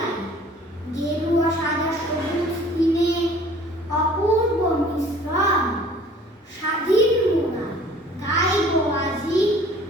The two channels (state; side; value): normal; both; correlation 0.51